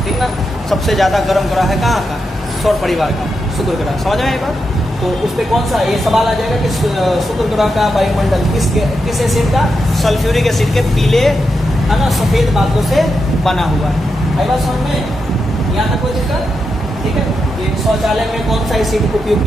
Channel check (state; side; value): normal; both; correlation 0.86